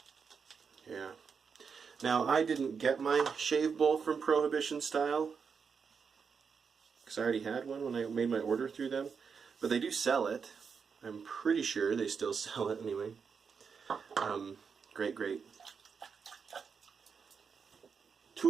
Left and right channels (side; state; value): left; quieter; 6.0 dB